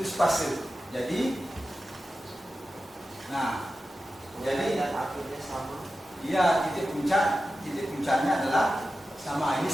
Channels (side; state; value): both; normal; correlation 0.93